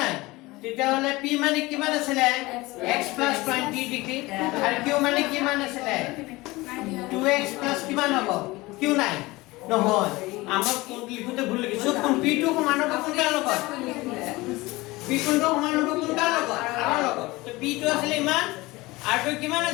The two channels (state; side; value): quieter; right; 21.1 dB